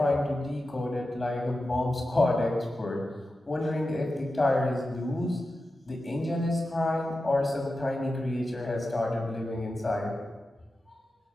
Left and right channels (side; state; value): both; normal; correlation 0.92